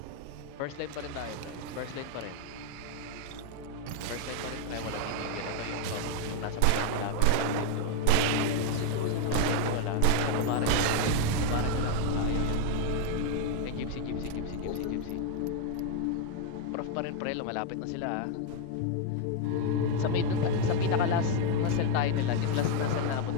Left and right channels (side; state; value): both; different; correlation 0.01